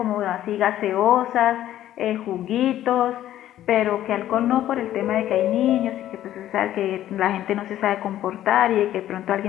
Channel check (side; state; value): right; quieter; 12.7 dB